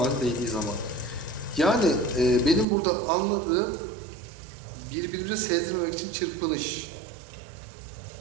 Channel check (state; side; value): drops out; left; at 2.7 s